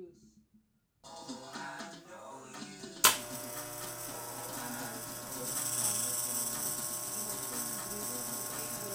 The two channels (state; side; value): identical; both; correlation 1.00